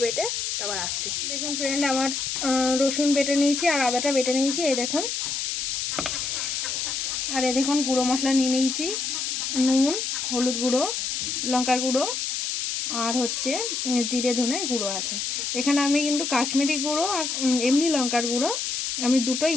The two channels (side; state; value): left; noise; hiss, 2 dB below the sound